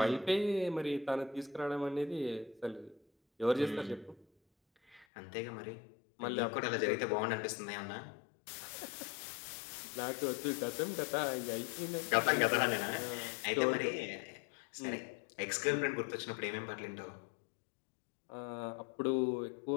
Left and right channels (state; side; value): drops out; right; at 5.1 s